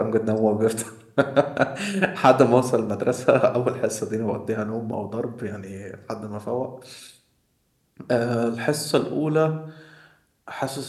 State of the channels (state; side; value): identical; both; correlation 1.00